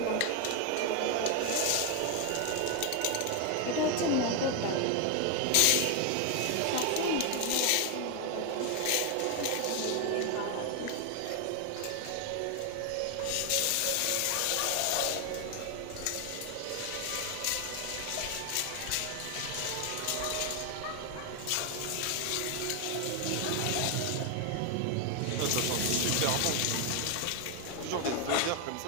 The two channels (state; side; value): different; both; correlation 0.01